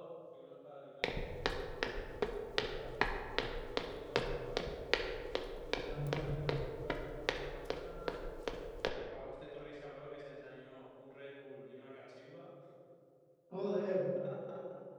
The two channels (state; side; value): identical; both; correlation 1.00